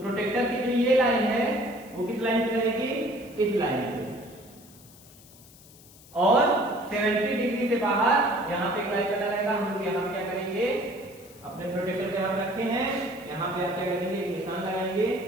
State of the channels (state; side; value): noise; left; hiss, 23 dB below the sound